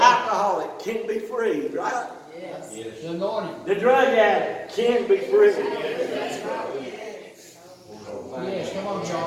can be free, right? Yes. The anointing. The drug addict can be free. Yes, come on,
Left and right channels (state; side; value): identical; both; correlation 1.00